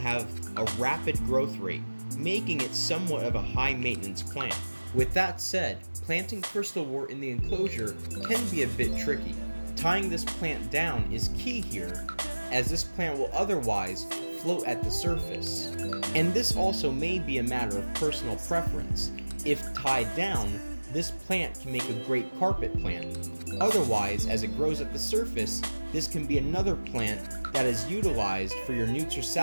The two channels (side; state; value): both; inverted; correlation -1.00